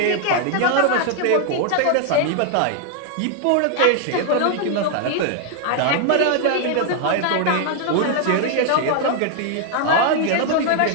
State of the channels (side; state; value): both; different; correlation 0.00